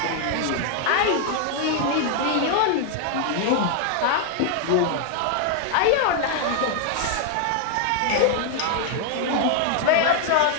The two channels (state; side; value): different; both; correlation 0.00